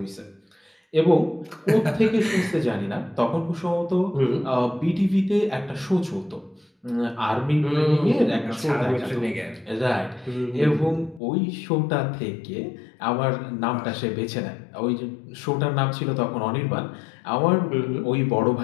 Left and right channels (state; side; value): drops out; right; at 11.2 s